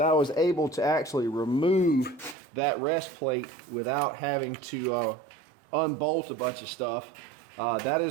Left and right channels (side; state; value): left; drops out; at 2.4 s